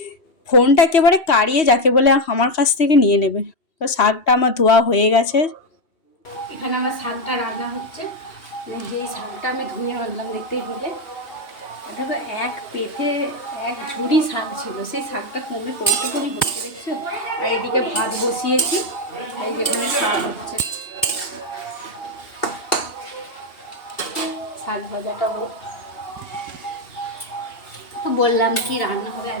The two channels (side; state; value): right; late; 2.8 ms